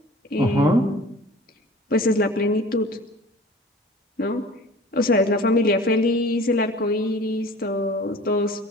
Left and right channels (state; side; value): normal; both; correlation 0.44